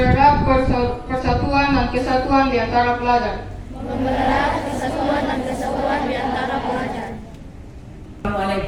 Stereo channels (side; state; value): both; identical; correlation 1.00